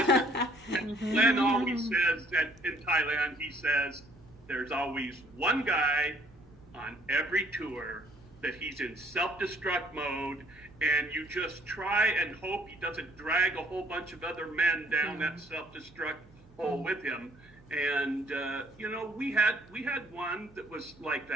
Glenn always says that in Thailand, he says there's always one guy on every tour that he's in self-destruct mode, and you just try and hope he doesn't drag a whole bunch of other men down that self-destruct hole with him. And we had one that was like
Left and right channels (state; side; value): noise; right; hum, 26 dB below the sound